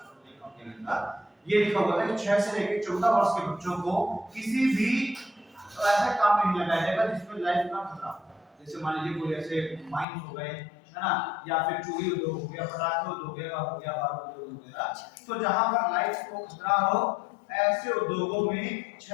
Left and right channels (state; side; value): drops out; right; at 10.1 s